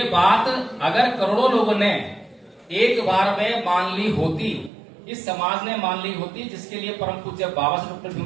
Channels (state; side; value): drops out; left; at 4.7 s